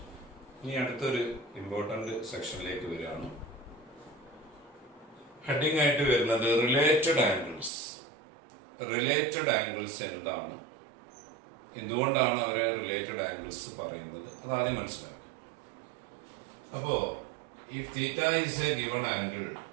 ഇനി അടുത്തൊരു ഇമ്പോർട്ടൻ്റ് സെക്ഷനിലേക്ക് വരികയാണ്. ഹെഡിങ് ആയിട്ട് വരുന്നത് റിലേറ്റഡ് ആംഗിൾസ്. റിലേറ്റഡ് ആംഗിൾസ് എന്താണ്, എന്തുകൊണ്ടാണ് അവരെ റിലേറ്റഡ് ആംഗിൾസ് പറയുന്നത്, അതാദ്യം മനസ്സിലാക്കുക. അപ്പോൾ if theta is a given angle,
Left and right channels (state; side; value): drops out; left; at 7.7 s